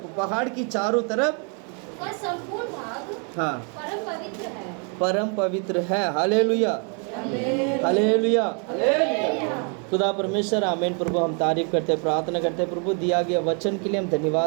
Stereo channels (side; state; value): left; quieter; 39.2 dB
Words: पहाड़ की चारों तरफ का संपूर्ण भाग परम पवित्र है। परम पवित्र है। Hallelujah, hallelujah. खुदा परमेश्वर आमीन। प्रभु हम तारीफ करते हैं, प्रार्थना करते हैं प्रभु दिया गया वचन के लिए हम